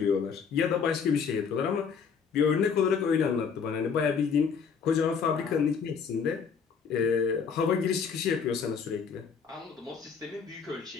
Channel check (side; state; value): right; quieter; 6.2 dB